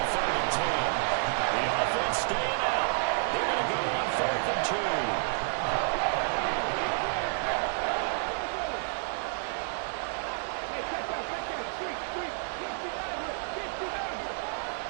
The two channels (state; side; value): silent; left; 58 dB below the other